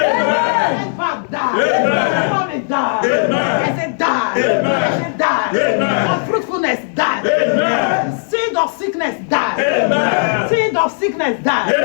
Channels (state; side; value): silent; right; digital silence